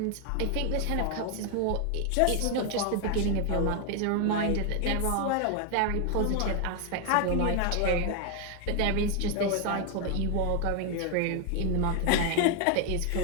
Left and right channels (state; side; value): different; both; correlation 0.01